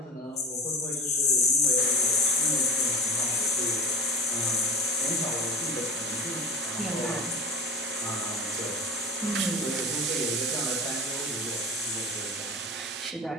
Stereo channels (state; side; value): normal; both; correlation 0.31